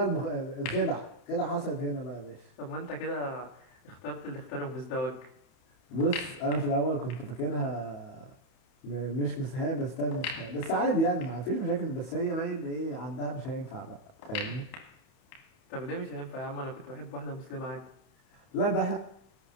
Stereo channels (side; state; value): right; late; 31 ms